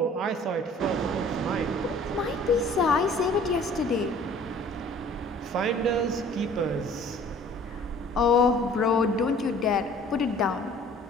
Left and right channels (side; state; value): both; normal; correlation 0.51